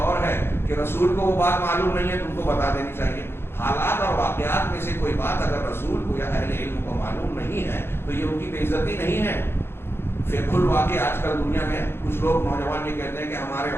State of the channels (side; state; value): right; late; 0.11 ms